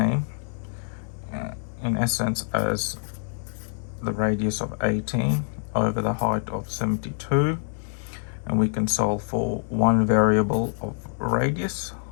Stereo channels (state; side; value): silent; right; 61 dB below the other